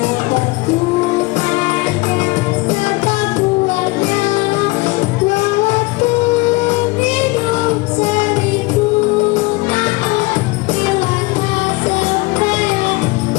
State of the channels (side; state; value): right; quieter; 23.2 dB